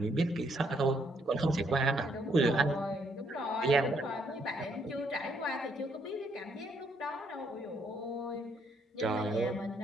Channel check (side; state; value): both; normal; correlation 0.71